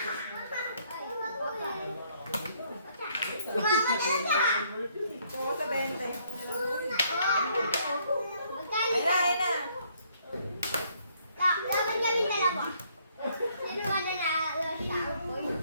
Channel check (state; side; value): inverted; both; correlation -0.67